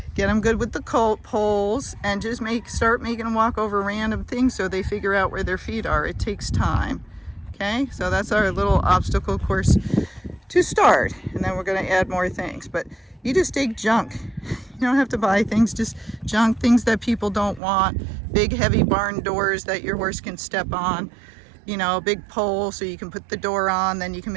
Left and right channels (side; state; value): left; drops out; at 17.6 s